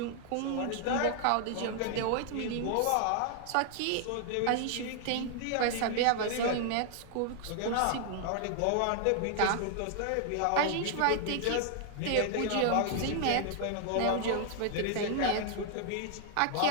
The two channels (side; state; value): both; different; correlation 0.00